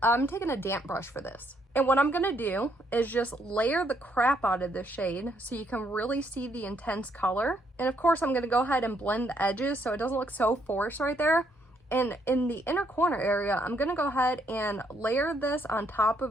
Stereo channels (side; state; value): both; normal; correlation 0.71